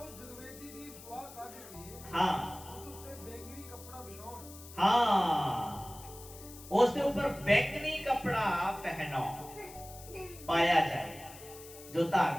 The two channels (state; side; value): noise; left; hiss, 17 dB below the sound